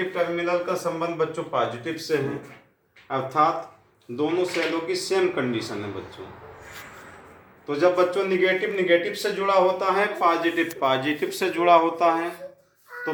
टर्मिनल का संबंध बच्चों पॉजिटिव से है, अर्थात दोनों सेलों की सेम कंडीशन है बच्चों। तो जब बच्चों निगेटिव से जुड़ा होता है, पॉजिटिव से जुड़ा होता है, तो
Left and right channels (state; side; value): identical; both; correlation 1.00